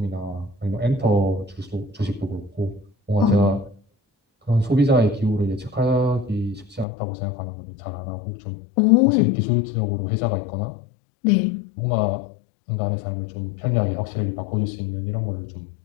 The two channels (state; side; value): drops out; right; at 6.9 s